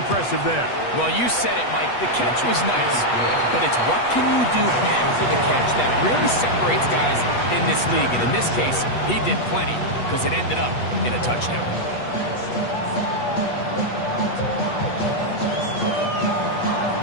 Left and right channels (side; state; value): right; late; 8.2 ms